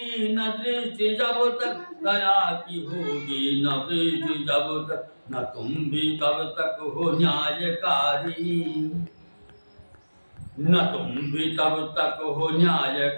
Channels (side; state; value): both; inverted; correlation -1.00